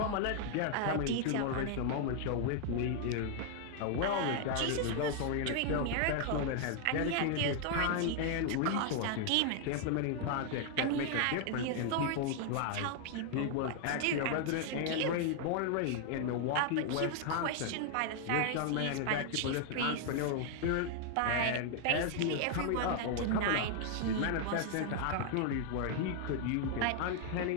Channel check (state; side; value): different; both; correlation 0.00